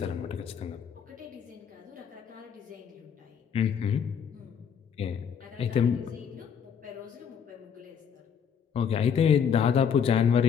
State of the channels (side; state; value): right; quieter; 7.4 dB